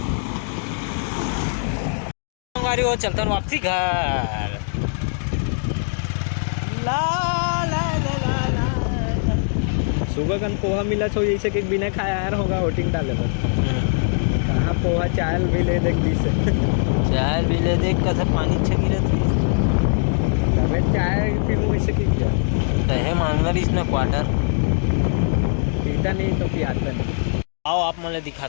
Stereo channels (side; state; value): right; silent; 65 dB below the other